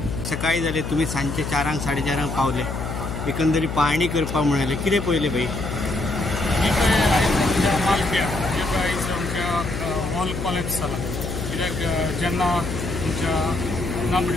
सकाळी जाले तुमी सांजचे 4 4:30 पावले एकंदरीत पाहणी करपाक म्हणाले कितें पळयलें भाई. मालप्या आयज आमच्या वॉल कॉलॅप्स जाला कित्याक जेन्ना आमच्या ना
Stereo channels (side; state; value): left; noise; hum, 5 dB below the sound